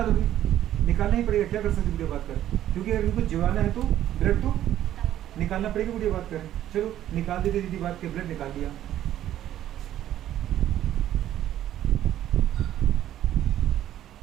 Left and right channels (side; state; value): left; quieter; 12.1 dB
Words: निकालना ही पड़ेगा, क्या कर सकते वीडियो बात करें, क्योंकि अगर इनको जिवाना है तो ब्लड तो निकालना पड़ेगा वीडियो बात करें। चलो निकाल देते दीदी बात के, ब्लड निकाल लिया,